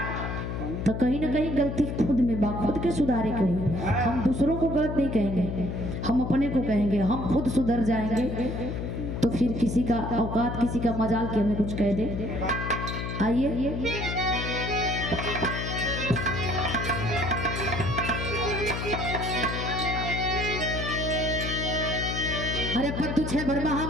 तो कहीं ना कहीं गलती खुद में बा, खुद के सुधारे के हुई। हम दूसरों को गलत नहीं कहेंगे, हम अपने को कहेंगे। हम खुद सुधर जाएंगे तो फिर किसी का औकात, किसी का मजाल के हमें कुछ कह दे। आइए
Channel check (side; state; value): left; noise; hum, 4 dB below the sound